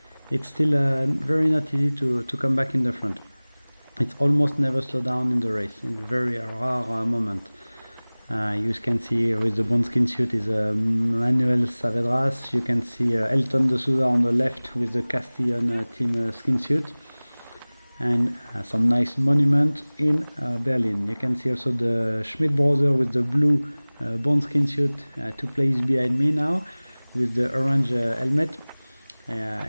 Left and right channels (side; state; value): both; inverted; correlation -1.00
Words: it's still very not easy to come back in the front. It's almost never slow down in the race, in a very rare moment. You can see with the bone skin suit is Manuel Saavedra. You can see Elton de Souza on the left with the CASTELLÓN team skin suit, and some nice monument in Berlin. You can see also the Schmidt brother with the blue bone skin suit, 2 places behind me now with the orange helmet.